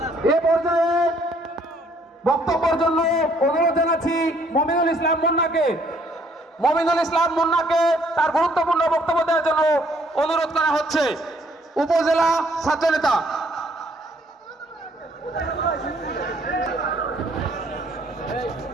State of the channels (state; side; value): normal; both; correlation 0.64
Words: এ পর্যায়ে বক্তব্যের জন্য অনুরোধ জানাচ্ছি মমিনুল ইসলাম মুন্নাকে। মমিনুল ইসলাম মুন্নাকে তার গুরুত্বপূর্ণ বক্তব্য দেওয়ার জন্য অনুরোধ করা হচ্ছে। উপজেলা ছাত্রনেতা।